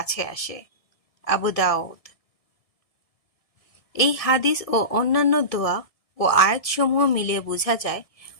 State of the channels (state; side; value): late; right; 1.7 ms